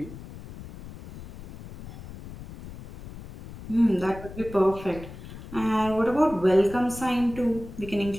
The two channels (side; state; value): left; noise; rumble, 14 dB below the sound